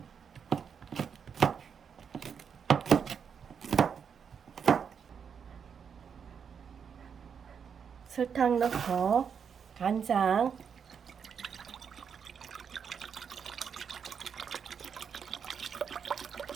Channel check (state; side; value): quieter; left; 7.0 dB